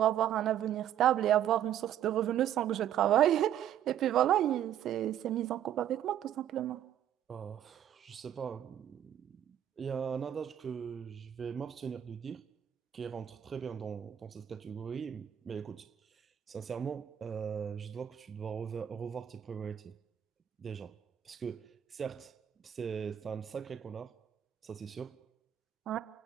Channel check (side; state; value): left; quieter; 10.5 dB